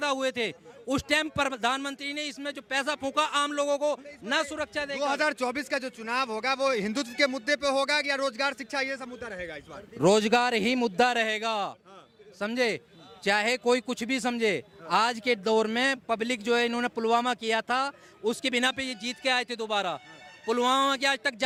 हुए थे, उस टाइम प्रधानमंत्री ने इसमें जो पैसा फूका आम लोगों को न सुरक्षा देगा। 2024 का जो चुनाव होगा वो हिंदुत्व के मुद्दे पे होगा या रोजगार शिक्षा ये सब मुद्दा रहेगा इस बार? रोजगार ही मुद्दा रहेगा, समझे, चाहे कोई कुछ भी समझे। आज के दौर में पब्लिक जो है, इन्होंने पुलवामा किया था, उसके बिना पे ये जीत के आए थे दोबारा। पुलवामा की आज तक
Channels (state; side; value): identical; both; correlation 1.00